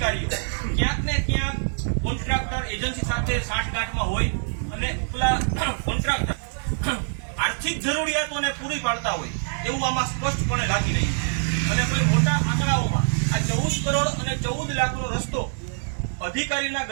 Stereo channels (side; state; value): left; silent; 62 dB below the other